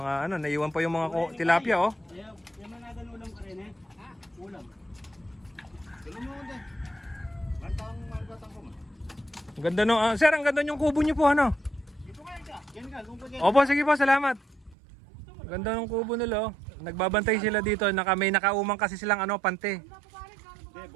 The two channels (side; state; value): left; drops out; at 14.8 s